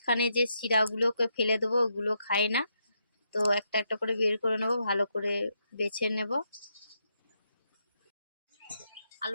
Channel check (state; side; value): inverted; both; correlation -0.80